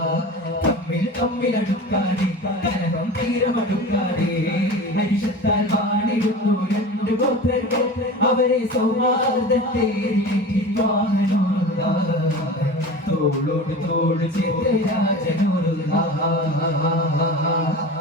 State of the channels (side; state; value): both; normal; correlation 0.34